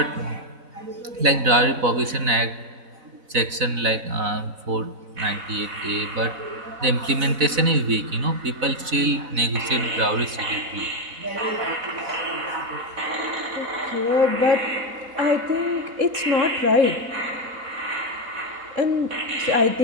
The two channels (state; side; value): late; left; 4.0 ms